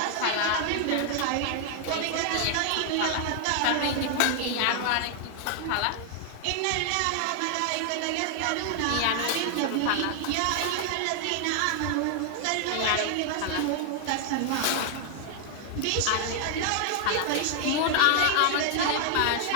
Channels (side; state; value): both; different; correlation 0.00